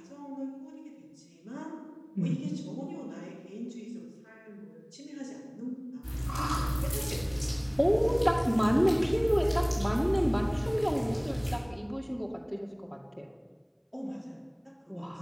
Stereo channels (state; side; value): identical; both; correlation 1.00